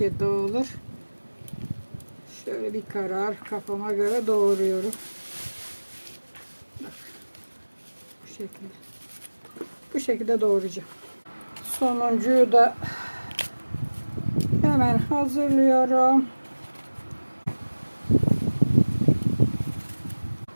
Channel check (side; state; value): both; inverted; correlation -1.00